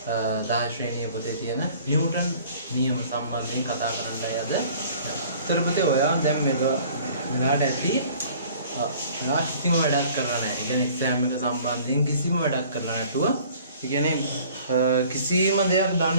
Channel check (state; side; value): inverted; both; correlation -0.51